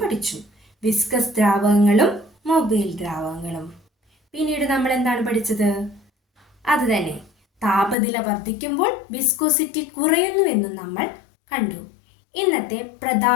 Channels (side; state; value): right; drops out; at 8.0 s